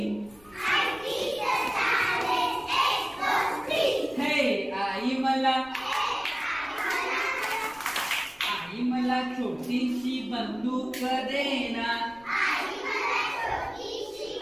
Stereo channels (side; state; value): left; noise; rumble, 28 dB below the sound